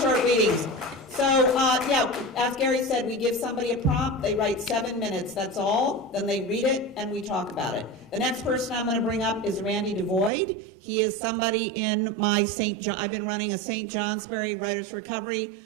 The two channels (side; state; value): left; drops out; at 10.3 s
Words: readings. So, as Gary said, we give somebody a prompt, they write 7 minutes, that's all, then they read it, and we talk about it. The next person I'm going to bring up is Randy DeVoid. He is somebody in my I've been running a St. Johnsbury Writers for Recovery